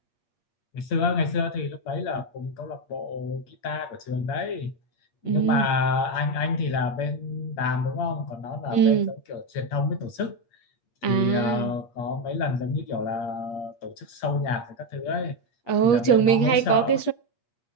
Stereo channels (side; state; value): right; late; 8.5 ms